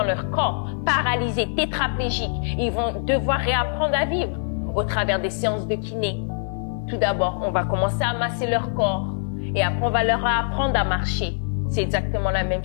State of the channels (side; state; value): right; silent; 63 dB below the other